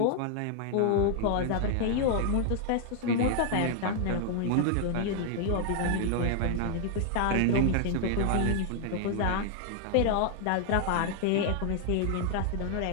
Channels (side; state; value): both; different; correlation 0.00